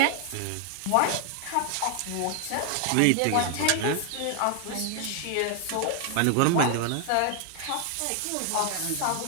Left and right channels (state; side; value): different; both; correlation 0.00